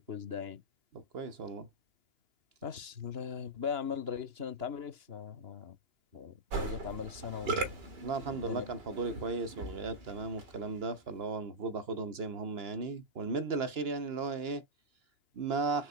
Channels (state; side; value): late; left; 2.9 ms